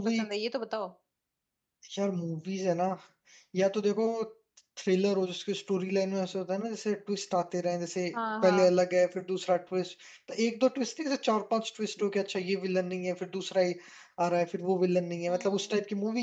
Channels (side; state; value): both; identical; correlation 1.00